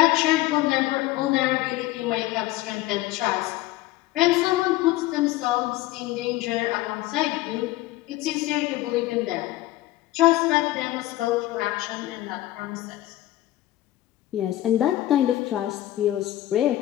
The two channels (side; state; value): right; quieter; 16.0 dB